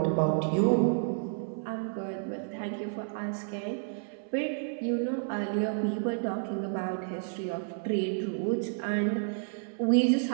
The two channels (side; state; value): left; silent; 57 dB below the other